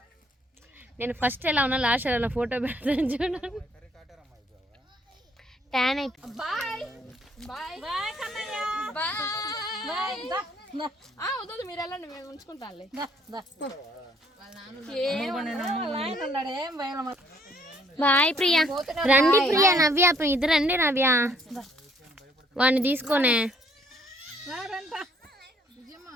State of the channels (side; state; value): both; normal; correlation 0.64